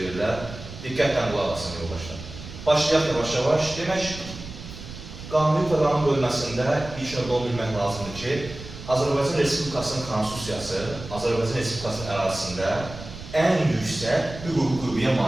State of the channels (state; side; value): noise; right; rumble, 13 dB below the sound